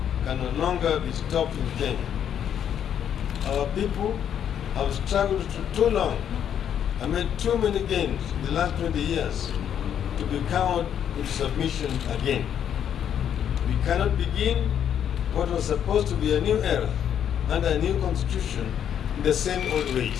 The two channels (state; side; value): quieter; right; 9.2 dB